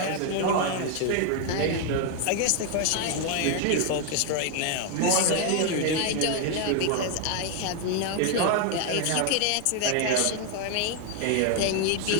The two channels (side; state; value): both; different; correlation 0.00